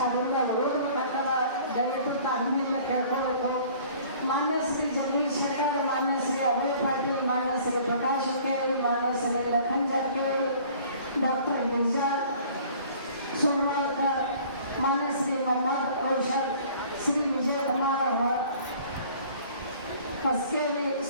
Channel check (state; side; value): inverted; both; correlation -0.51